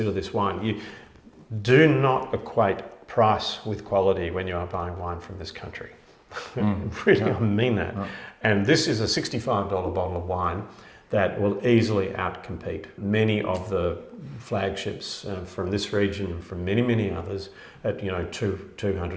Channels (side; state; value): both; identical; correlation 1.00